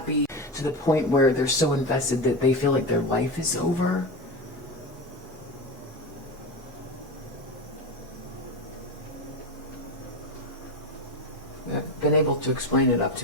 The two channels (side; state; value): both; normal; correlation 0.21